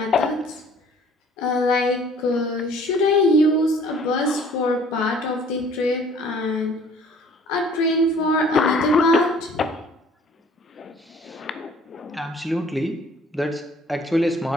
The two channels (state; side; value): normal; both; correlation 0.54